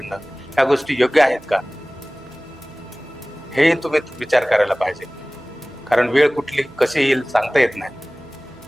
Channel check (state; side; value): noise; right; hum, 28 dB below the sound